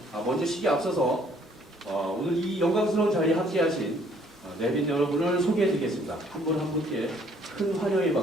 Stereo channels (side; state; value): both; normal; correlation 0.61